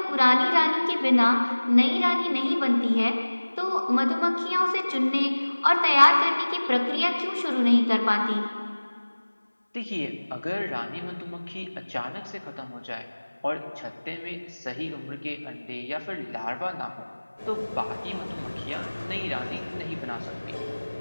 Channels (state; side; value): inverted; both; correlation -1.00